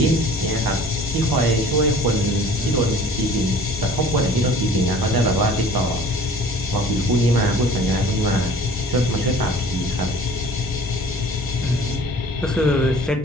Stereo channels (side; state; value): both; normal; correlation 0.47